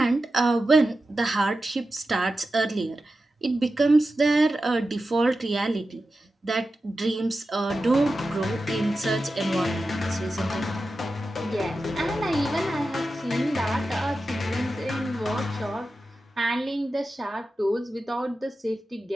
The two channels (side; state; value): both; normal; correlation 0.92